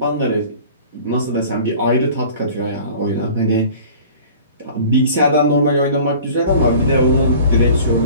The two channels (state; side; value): inverted; both; correlation -0.45